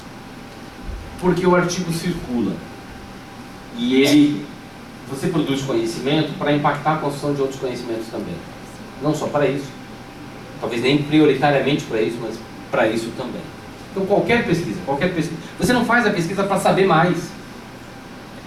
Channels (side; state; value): both; identical; correlation 1.00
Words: Porque o artigo circula. E você produz conhecimento para impactar a construção de outros conhecimentos também. Não só para isso. Talvez nem prioritariamente para isso, mas para isso também. Então qualquer pesquisa. Você não faz a pesquisa para saber mais.